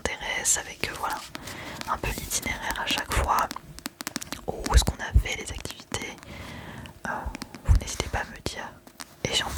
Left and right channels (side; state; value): both; identical; correlation 1.00